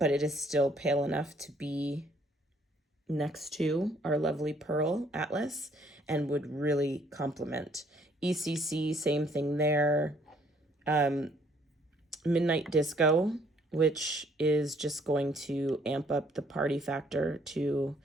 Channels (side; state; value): both; normal; correlation 0.64